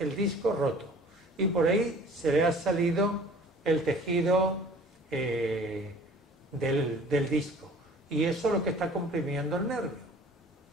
disco roto. Y por ahí se le ha salido el tejido del disco. Y eso es lo que está comprimiendo el nervio.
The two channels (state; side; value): normal; both; correlation 0.49